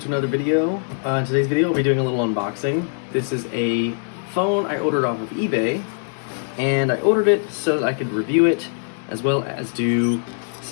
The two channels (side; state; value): right; silent; digital silence